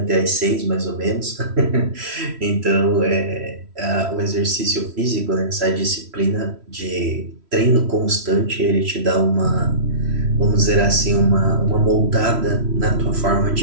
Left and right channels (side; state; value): left; late; 3.1 ms